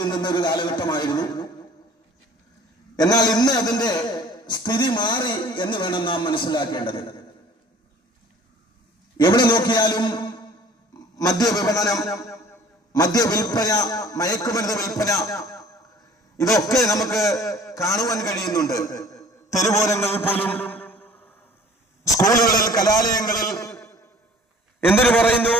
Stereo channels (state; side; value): normal; both; correlation 0.50